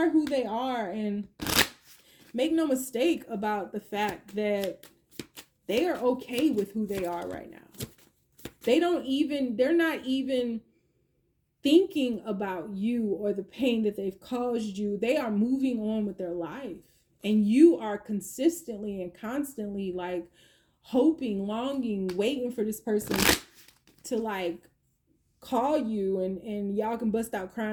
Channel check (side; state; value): both; identical; correlation 1.00